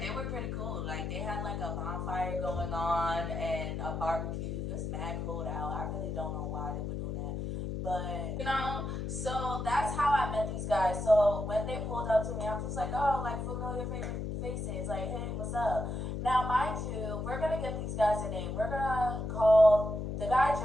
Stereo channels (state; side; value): noise; left; hum, 3 dB below the sound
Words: they were pretty cool. Like they had like a bonfire going on and a barbecue. It was mad cold out. I really don't know why they were doing that. But you know, so that's how I met these guys. So when they pulled up to me, I'm just like, oh, like familiar faces. Like, hey, what's up? Now, mind you, we're gonna give these guys a name. We're gonna call the guy